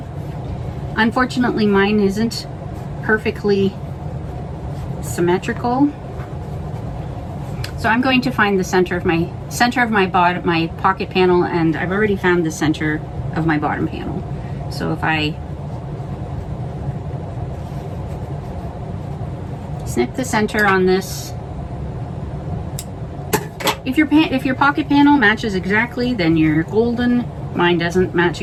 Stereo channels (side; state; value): both; identical; correlation 1.00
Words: Unfortunately, mine isn't perfectly symmetrical. So I'm going to find the center of my pocket panel, and I've already found the center of my bottom panel. So if I snip the center on this, if your pocket panel matches exactly, then you're golden. Mine doesn't match